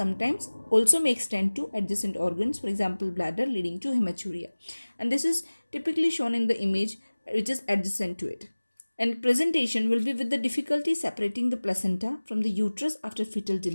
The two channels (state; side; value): inverted; both; correlation -1.00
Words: also may extend to adjacent organs, for example, bladder, leading to hematuria. And this is typically shown in the image which is adjacent to it. And presentation will be with the difficulty separating the placenta from the uterus after fetal